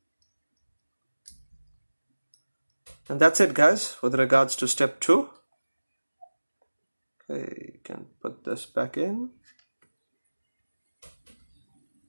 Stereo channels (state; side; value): inverted; both; correlation -1.00